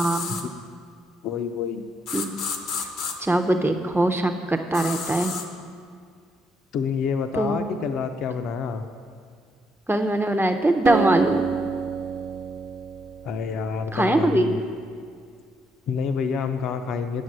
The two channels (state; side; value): normal; both; correlation 0.77